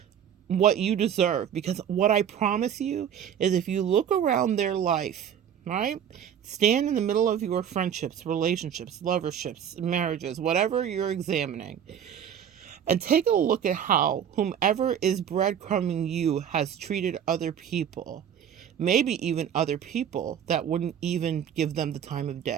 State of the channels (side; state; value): left; quieter; 9.0 dB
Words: what you deserve. Because what I promise you is, if you look around their life, right? Stand in the middle of your friendships, relationships, loverships, marriages, whatever you're examining, and take a look at how whomever is breadcrumbing you has treated other people. Maybe even other people that wouldn't even give them the time of